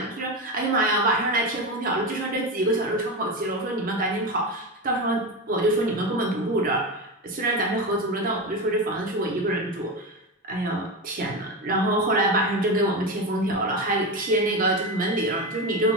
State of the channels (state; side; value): normal; both; correlation 0.18